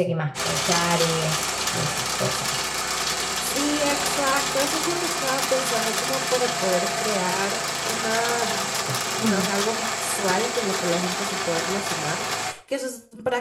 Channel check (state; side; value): identical; both; correlation 1.00